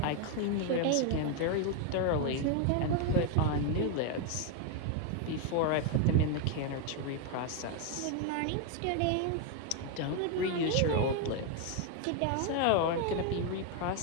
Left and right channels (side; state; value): both; different; correlation 0.01